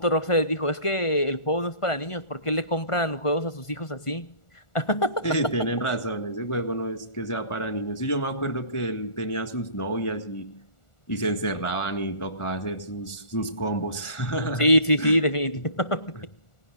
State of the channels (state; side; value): late; right; 1.4 ms